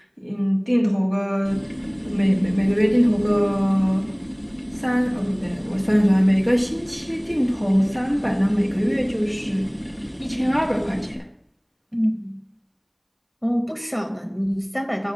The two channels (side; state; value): both; identical; correlation 1.00